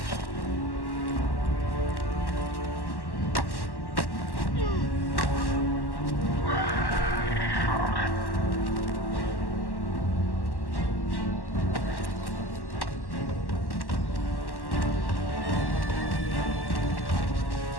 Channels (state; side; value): late; right; 1.1 ms